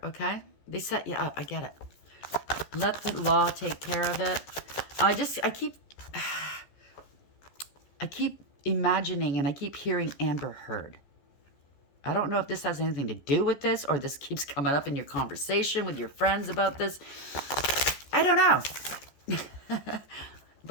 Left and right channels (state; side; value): late; right; 14 ms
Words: okay? They set you up. I get it. Let the law take care of it. I keep imagining and I keep hearing Amber Heard. I don't know if this has anything to do with this or this keeps coming up in your conversation with your friends about this. I don't know.